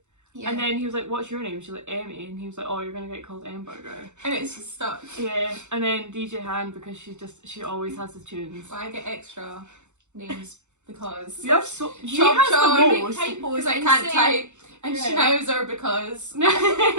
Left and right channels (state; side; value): late; left; 0.83 ms